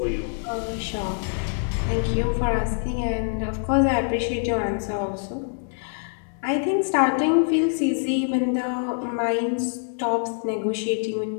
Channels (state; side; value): silent; right; 62 dB below the other